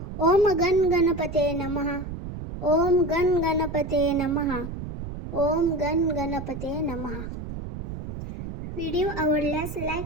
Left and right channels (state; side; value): noise; right; rumble, 8 dB below the sound